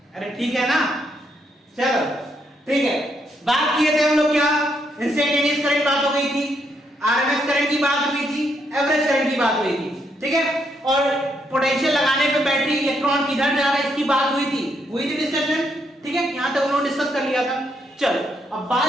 अरे ठीक है ना? चलो ठीक है। बात किए थे हम लोग क्या? इंस्टेंटेनियस करंट बात हो गई थी, आरएमएस करंट की बात हुई थी, एवरेज करंट की बात हुई थी, ठीक है। और पोटेंशियल लगाने पे बैटरी इलेक्ट्रॉन किधर जा रहा है इसकी बात हुई थी डिस्कशन, ठीक है। यहां तक उन्होंने डिस्कस कर लिया था। चलो अब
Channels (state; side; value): normal; both; correlation 0.76